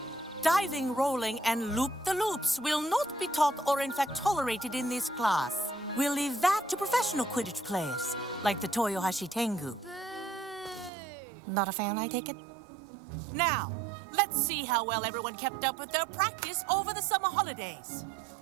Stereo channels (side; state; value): left; drops out; at 10.9 s